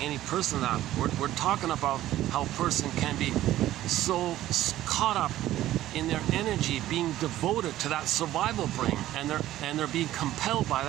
any person that. We're talking about how a person can be so caught up in their energy, being devoted to that survival brain, and they're being compelled by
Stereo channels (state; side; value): quieter; left; 14.1 dB